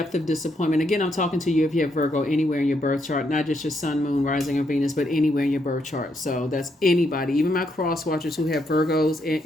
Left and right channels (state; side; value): normal; both; correlation 0.77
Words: of disappointment. Again, I'm talking to you if you have Virgo anywhere in your birth chart, not just your sun, moon, rising, or Venus, but anywhere in your birth chart. So that's anybody, even my cross watchers who have